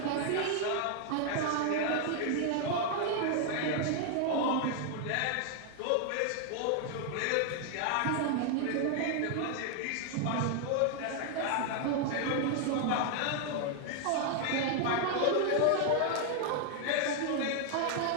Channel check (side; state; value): both; different; correlation 0.00